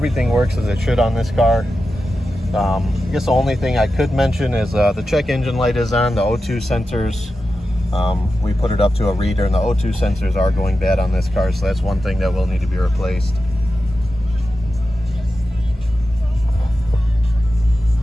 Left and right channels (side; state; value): both; normal; correlation 0.91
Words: works as it should on this car. I guess the only thing I could mention is the check engine light is on, the O2 sensors. We put it up to a reader, and the O2 sensors are going bad on this car, so that's one thing that will need to be replaced.